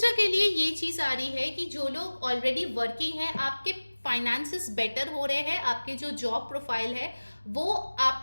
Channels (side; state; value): both; inverted; correlation -1.00